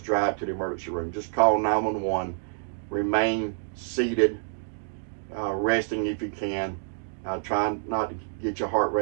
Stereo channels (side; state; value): left; silent; digital silence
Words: drive to the emergency room. Just call 911. Remain seated, resting if you can. Try not to get your heart